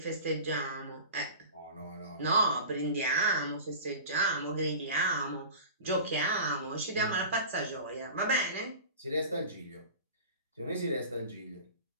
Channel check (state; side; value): inverted; both; correlation -0.36